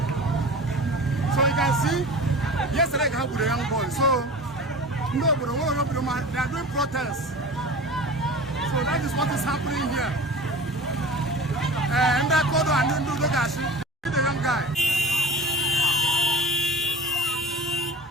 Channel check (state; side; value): normal; both; correlation 0.37